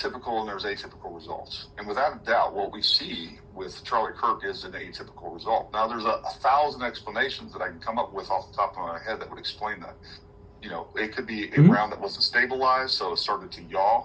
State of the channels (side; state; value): both; identical; correlation 1.00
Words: and there's atypical results. And without a doubt, what we see with Charlie Kirk is an atypical result. Now, there's a 1,000 explanations that I can come up with off the top of my head that would explain that. It could be a round that wasn't stabilized, so it started to yaw